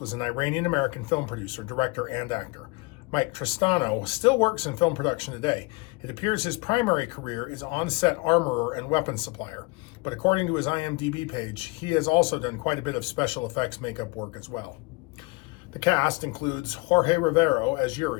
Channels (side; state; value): right; quieter; 25.8 dB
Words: was an Iranian-American film producer, director, and actor. Mike Tristano still works in film production today. It appears his primary career is on-set armorer and weapons supplier, but according to his IMDb page, he has also done quite a bit of special effects makeup work as well. The cast includes Jorge Rivero as